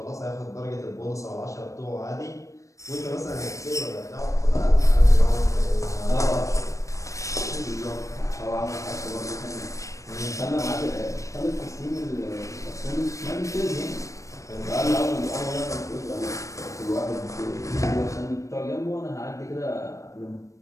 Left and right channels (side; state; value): right; late; 0.15 ms